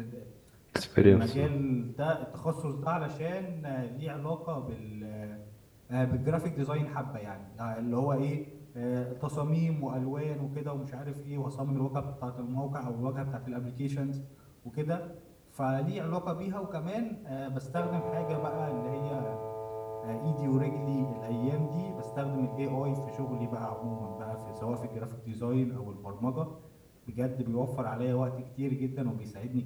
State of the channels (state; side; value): identical; both; correlation 1.00